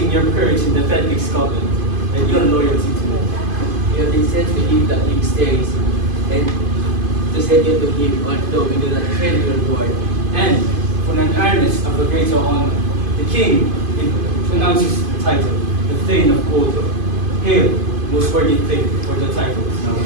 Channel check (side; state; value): left; late; 2.5 ms